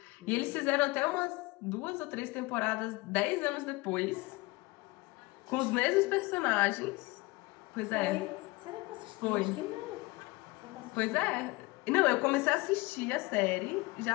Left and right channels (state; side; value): quieter; right; 23.3 dB